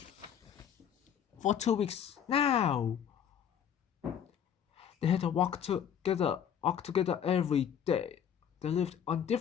For 2 weeks now. They had to walk together every day. They lived on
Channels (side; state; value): right; quieter; 8.7 dB